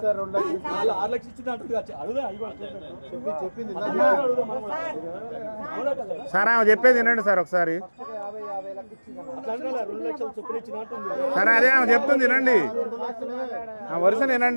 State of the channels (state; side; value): inverted; both; correlation -1.00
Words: లక్షలు ఇచ్చింది అంటుంది అడుగుదా చెప్పింది సార్ ఆమె చెప్పేది వినండి సార్ ఒకసారి. అట్లా 2 లక్షలు చొప్పున ఇచ్చిన అంటుంది. సరే అదే ఆమె చెప్తుంది వినండి, ఆ వరుస